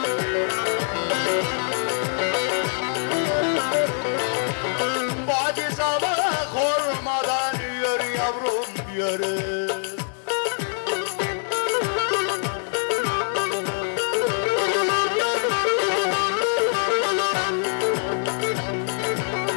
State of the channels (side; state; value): right; silent; 63 dB below the other